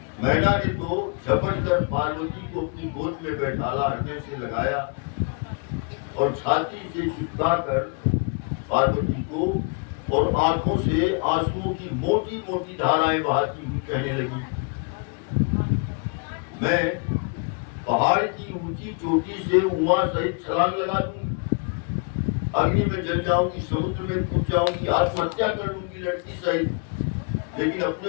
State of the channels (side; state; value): right; quieter; 36.1 dB